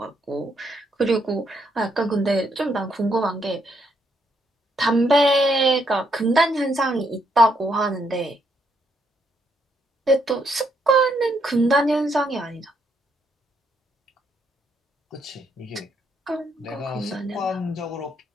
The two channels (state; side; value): normal; both; correlation 0.75